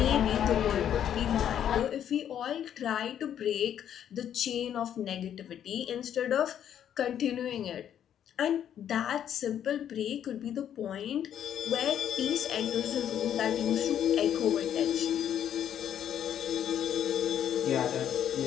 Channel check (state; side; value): quieter; right; 9.8 dB